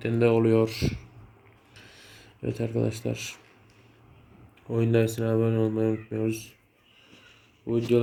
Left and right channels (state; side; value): identical; both; correlation 1.00